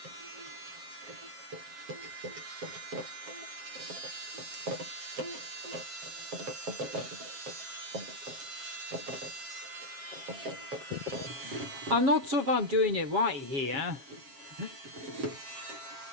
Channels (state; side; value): late; left; 7.4 ms